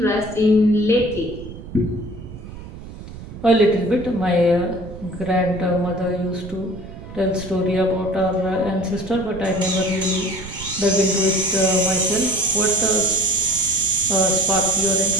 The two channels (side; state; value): right; noise; rumble, 13 dB below the sound